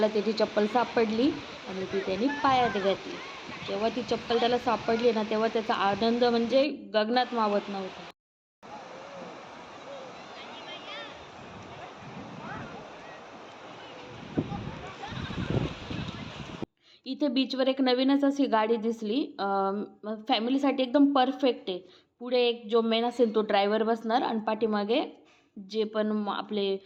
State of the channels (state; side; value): identical; both; correlation 1.00